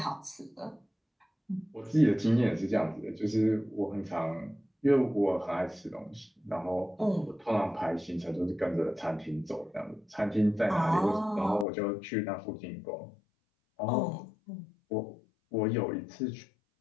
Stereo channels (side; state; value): right; drops out; at 11.7 s